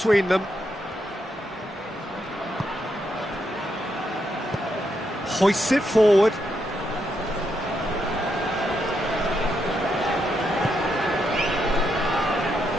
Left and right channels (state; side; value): normal; both; correlation 0.80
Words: them. Hoists it forward.